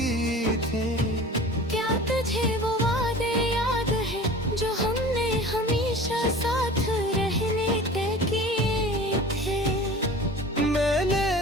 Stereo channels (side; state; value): both; normal; correlation 0.40